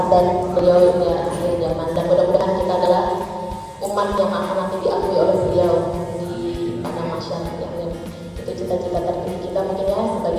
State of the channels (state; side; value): identical; both; correlation 1.00